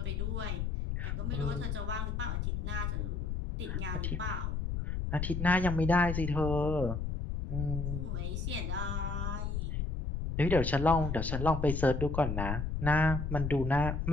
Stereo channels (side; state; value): left; noise; rumble, 2 dB below the sound